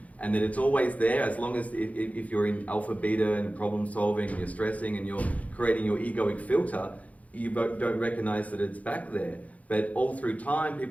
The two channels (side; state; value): right; late; 0.069 ms